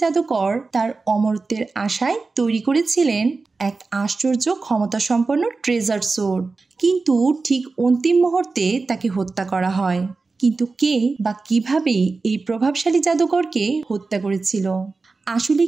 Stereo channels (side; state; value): left; quieter; 4.0 dB